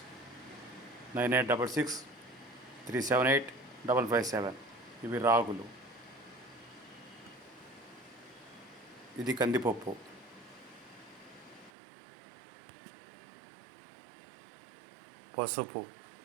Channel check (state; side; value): drops out; left; at 11.7 s